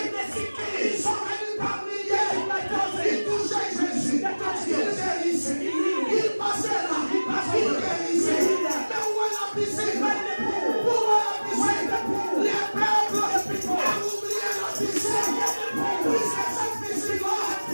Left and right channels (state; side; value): inverted; both; correlation -1.00